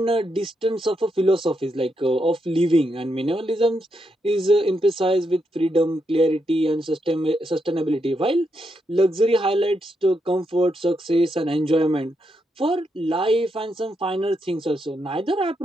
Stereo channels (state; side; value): normal; both; correlation 0.81